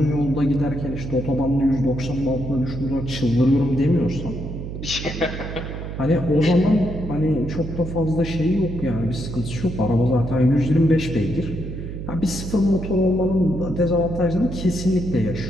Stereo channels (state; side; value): noise; right; hum, 7 dB below the sound